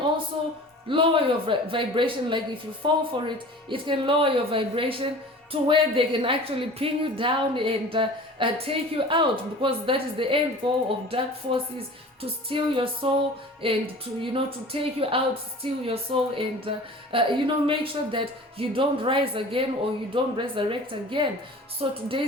lower your vibration. Like if you fall for it, it can lower your vibration to where they can actually pin you down and take you out, because that is the end goal of dark forces, to steal your soul, and to take you out, steal your soul, and make sure that you don't rise again, or you don't resurrect again. So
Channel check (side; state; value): both; normal; correlation 0.41